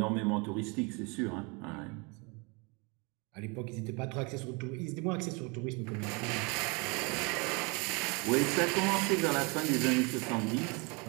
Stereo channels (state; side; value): quieter; left; 30.1 dB